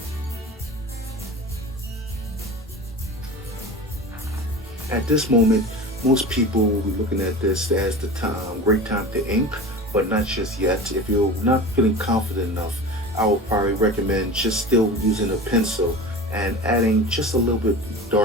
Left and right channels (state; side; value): normal; both; correlation 0.33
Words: At this moment, most people will be looking at this as the time, great time to ink, but not just yet. If you're not feeling confident enough, I would probably recommend just still using a pencil and adding just a little bit